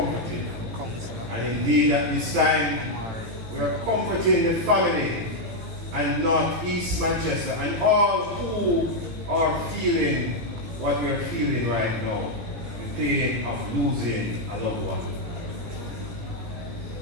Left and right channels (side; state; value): left; late; 18 ms